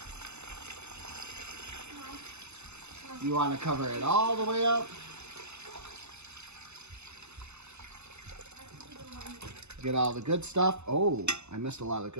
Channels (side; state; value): left; late; 0.81 ms